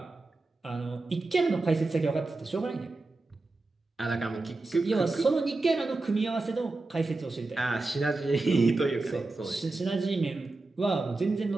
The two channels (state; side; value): quieter; left; 3.3 dB